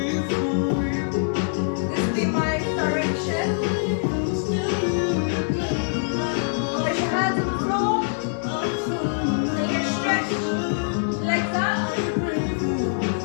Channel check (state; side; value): silent; right; digital silence